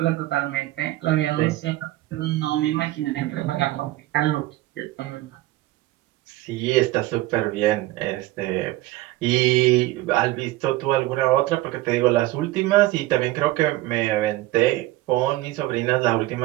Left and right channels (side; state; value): left; quieter; 17.2 dB